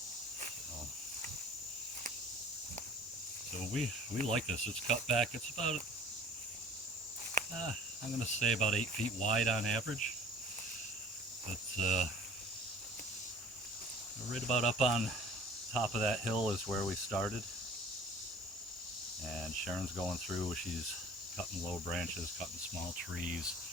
So we like this. It's cut back. It's about, I'm going to say about 8 feet wide on average. But right about up on top of that hill is where we started. And Sharon's going through. She's cutting low branches, cutting small trees,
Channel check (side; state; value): both; normal; correlation 0.47